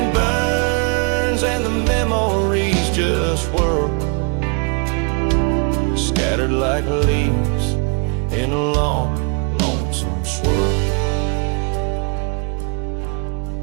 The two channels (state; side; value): quieter; left; 35.7 dB